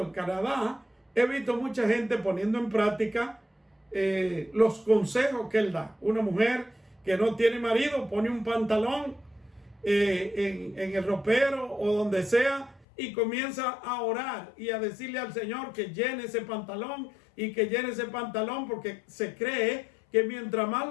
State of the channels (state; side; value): drops out; right; at 12.9 s